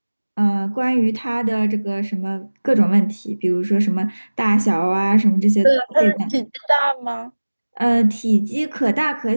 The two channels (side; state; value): both; inverted; correlation -1.00